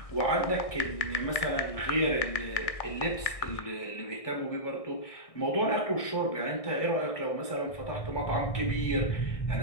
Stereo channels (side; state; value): right; late; 1.6 ms